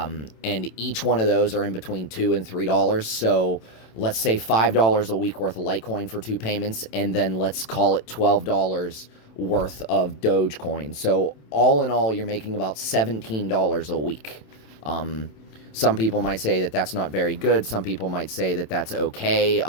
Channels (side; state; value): right; late; 27 ms